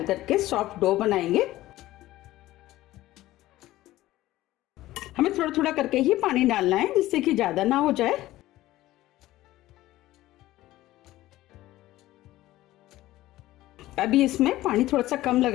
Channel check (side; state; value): right; quieter; 16.1 dB